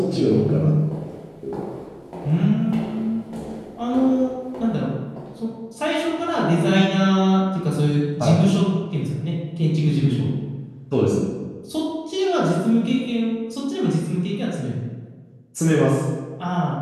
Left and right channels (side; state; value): both; identical; correlation 1.00